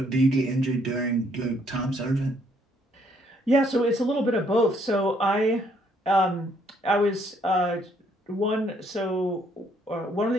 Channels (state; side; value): normal; both; correlation 0.68